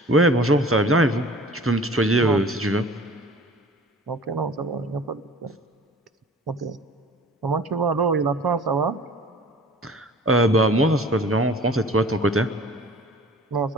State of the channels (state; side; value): normal; both; correlation 0.45